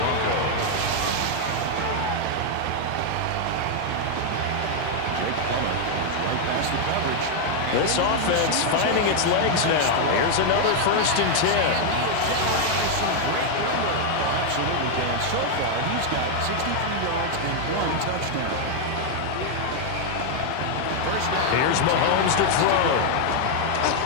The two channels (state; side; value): different; both; correlation 0.00